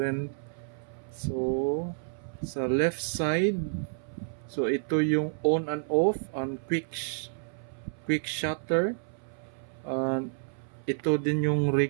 So sa left side, so ito yung on and off and quick shutter. Ito din yung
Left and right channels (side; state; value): left; silent; 58 dB below the other